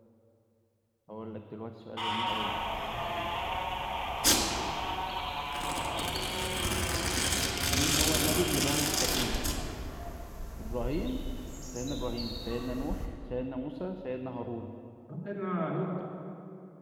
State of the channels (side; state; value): both; identical; correlation 1.00